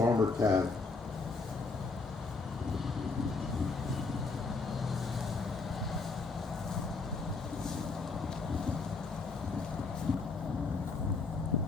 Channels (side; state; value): right; quieter; 4.1 dB